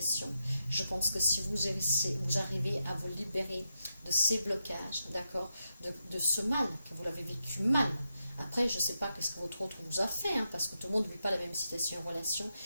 je pense que si vous arrivez à vous libérer de ces blocages, d'accord, de ce mal, que vous l'avez vécu mal. Après, je ne sais pas qu'est-ce que votre autre vous a fait, hein, parce que tout le monde ne vit pas la même situation en relation,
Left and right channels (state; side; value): inverted; both; correlation -0.86